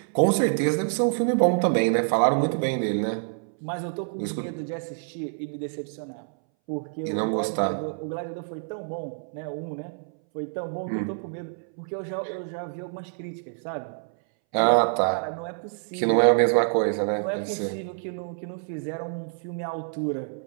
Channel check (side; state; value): left; silent; 60 dB below the other